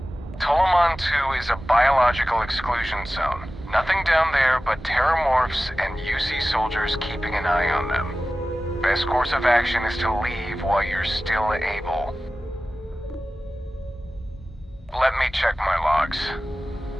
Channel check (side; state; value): both; normal; correlation 0.95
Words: Tolomon 2 is a biological exclusion zone. Nothing down there but terramorphs and UC soldiers keeping an eye on them. Best course of action is to leave while you're still able. Let me check my logs.